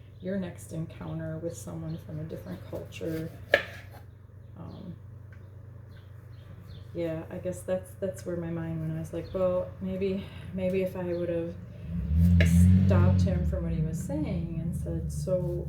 your next encounter with someone from a different culture? Yeah, I guess that's where my mind went. I was like, well, maybe if I would have stopped him from what he was saying and said, so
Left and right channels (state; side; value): identical; both; correlation 1.00